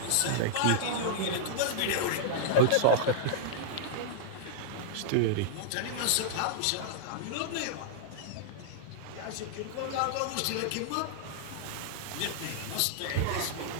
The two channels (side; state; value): both; different; correlation -0.02